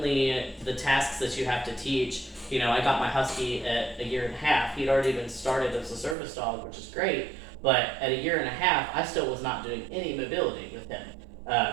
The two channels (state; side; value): drops out; left; at 6.2 s